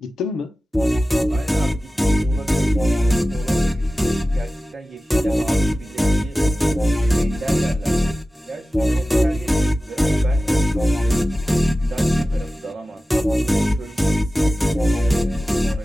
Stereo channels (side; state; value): both; normal; correlation 0.95